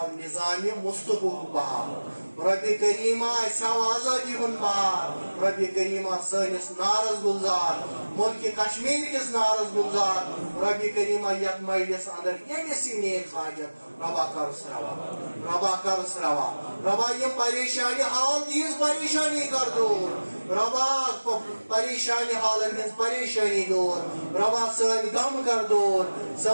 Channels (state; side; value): inverted; both; correlation -1.00